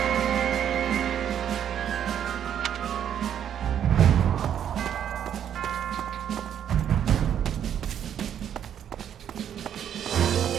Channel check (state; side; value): quieter; left; 9.4 dB